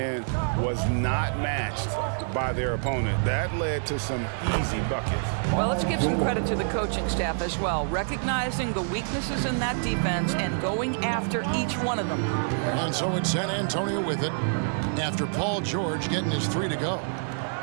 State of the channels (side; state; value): left; silent; digital silence